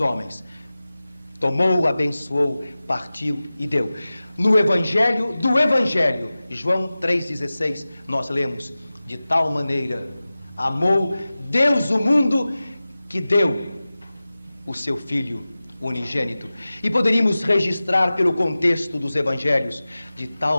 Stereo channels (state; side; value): inverted; both; correlation -0.97